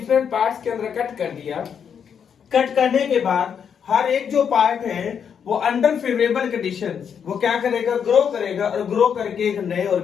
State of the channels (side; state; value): right; quieter; 7.5 dB